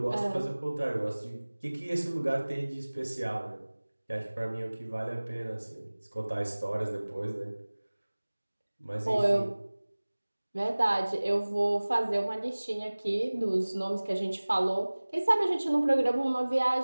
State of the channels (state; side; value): inverted; both; correlation -1.00